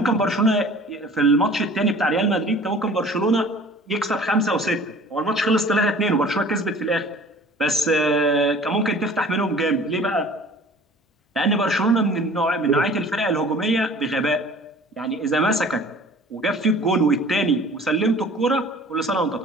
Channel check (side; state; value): both; normal; correlation 0.47